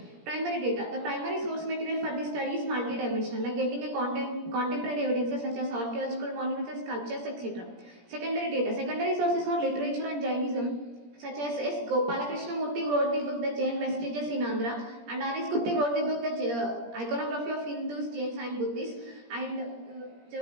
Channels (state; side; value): late; left; 17 ms